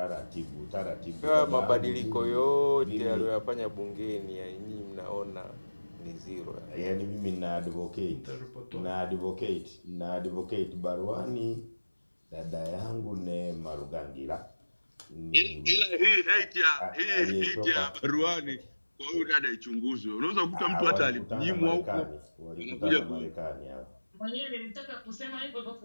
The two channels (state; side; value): inverted; both; correlation -1.00